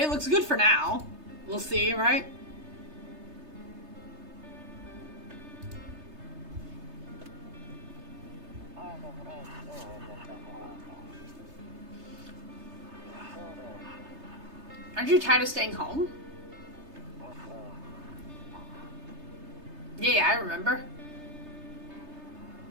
looks good for now. We'll see, right? Aren't you tired of staying home? Yeah, I remember.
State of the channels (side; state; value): left; late; 3.3 ms